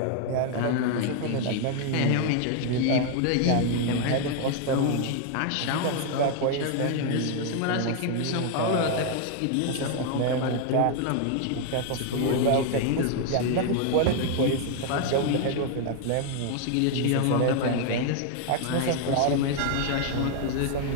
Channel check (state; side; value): different; both; correlation 0.00